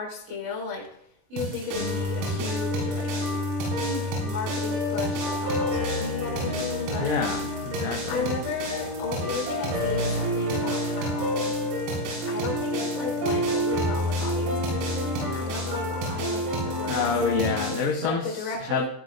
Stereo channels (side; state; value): left; late; 24 ms